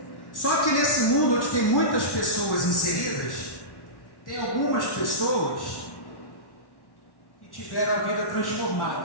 Só que nesse mundo onde tem muitas pessoas inseridas, tem algumas pessoas que tiveram a vida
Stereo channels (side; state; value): right; late; 1.1 ms